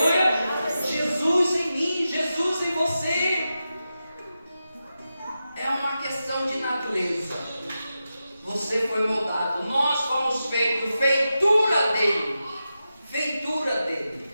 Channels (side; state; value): both; inverted; correlation -0.91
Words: Jesus em mim, Jesus em você. É uma questão de natureza. Você foi moldado. Nós fomos feitos, feitura dele. Feitura dele.